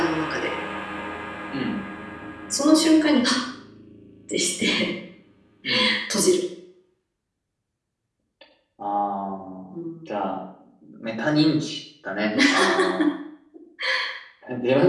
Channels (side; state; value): both; identical; correlation 1.00